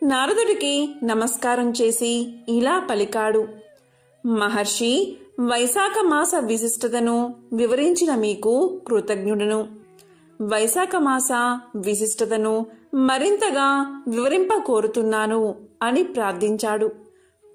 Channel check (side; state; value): both; identical; correlation 1.00